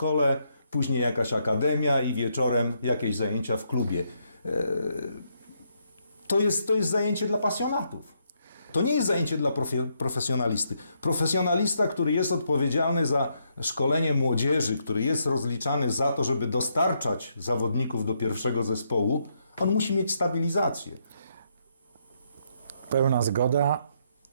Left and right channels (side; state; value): both; inverted; correlation -0.76